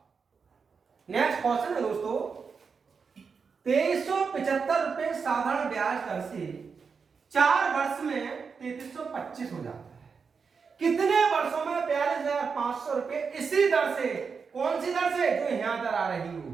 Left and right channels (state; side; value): quieter; left; 5.5 dB